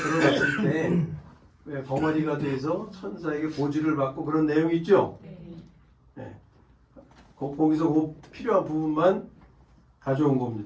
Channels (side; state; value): both; identical; correlation 1.00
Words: 때 왜 벙어리가 돼서 천사에게 보지를 받고 그런 내용이 있죠. 네. 거기서 그 필요한 부분만 가져온